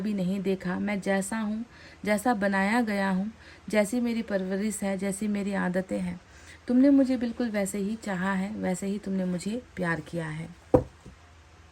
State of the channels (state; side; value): identical; both; correlation 1.00